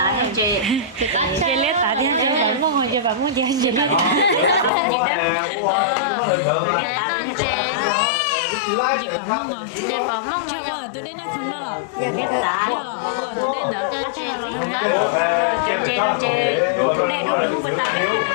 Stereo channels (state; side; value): drops out; right; at 4.7 s